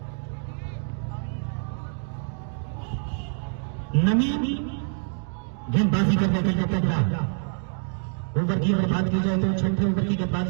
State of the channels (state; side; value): silent; left; 60 dB below the other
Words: नवीन गेंदबाजी करने के लिए तैयार। ओवर की अगर बात की जाए तो 6ठे ओवर की